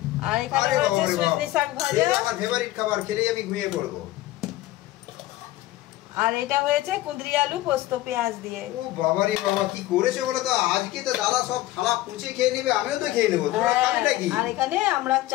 আর এখানে রয়েছে সজনে শাক ভাজা। আমার ফেভারিট খাবার, খেলেই আমি ঘুমিয়ে পড়বো। আর এটা হয়েছে কুঁদরি আলু পোস্ত পেঁয়াজ দিয়ে। ও বাবা রে বাবা, কি করেছো বলো তো? আজকে তো দাদা সব থালা পুছে খেয়ে নেবে, আমিও তো খেয়ে নেবো। তোমরা খাবে নাকি? আর এখানে আমরা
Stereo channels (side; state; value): right; quieter; 16.3 dB